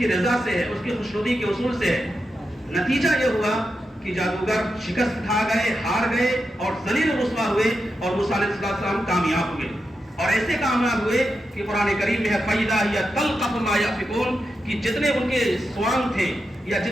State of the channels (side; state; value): both; normal; correlation 0.88